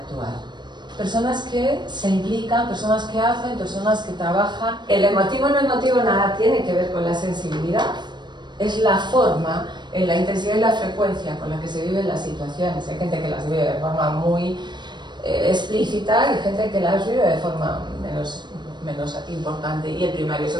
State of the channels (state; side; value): late; left; 0.22 ms